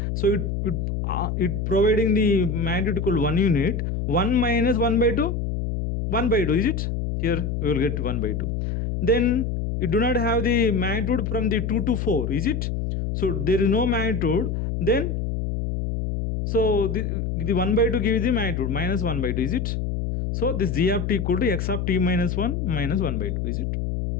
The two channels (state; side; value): noise; left; hum, 2 dB below the sound